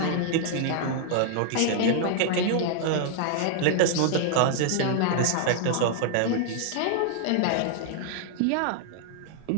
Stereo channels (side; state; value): both; different; correlation -0.01